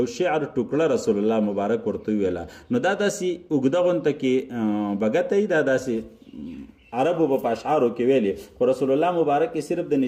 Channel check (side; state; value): both; identical; correlation 1.00